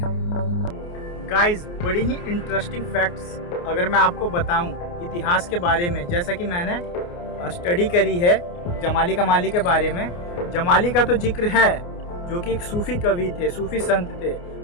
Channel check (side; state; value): right; late; 29 ms